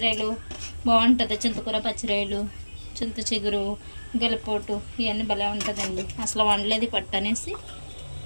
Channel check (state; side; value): inverted; both; correlation -1.00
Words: బాగుంటుంది. చింతకూర పచ్చిరాయలు, చింత చిగురు, గెలపోటు ఇవన్నీ భలే ఉంటుందండి. అసలు వండలేదు పట్టు అనేసి.